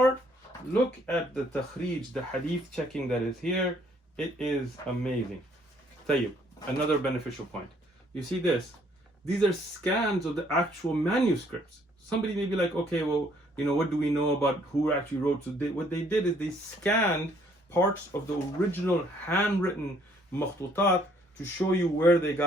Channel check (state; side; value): normal; both; correlation 0.63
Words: look at the takhrij, the hadith checking that is here. It is amazing. Tayyib, another beneficial point. You see this? These are scans of the actual manuscripts. Somebody may be like, okay, well, what do we know about who actually wrote? So what they did is they scanned parts of the original handwritten makhtutat to show you where they